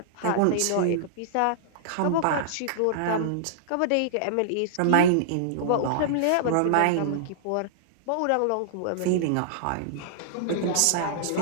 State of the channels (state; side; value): different; both; correlation -0.02